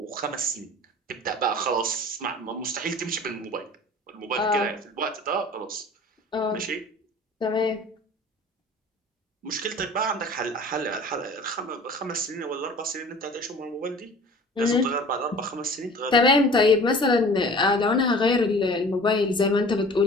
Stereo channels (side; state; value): both; normal; correlation 0.44